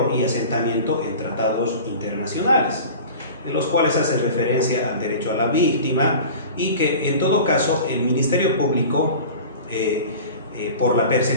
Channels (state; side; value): inverted; both; correlation -0.38